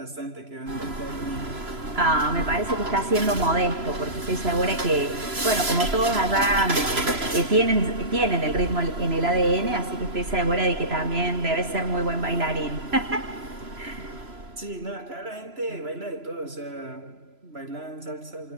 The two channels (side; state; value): left; late; 3.0 ms